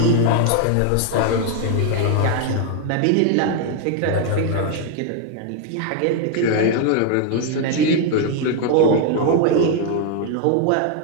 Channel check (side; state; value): both; different; correlation 0.00